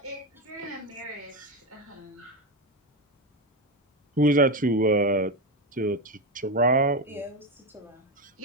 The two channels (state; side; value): normal; both; correlation 0.12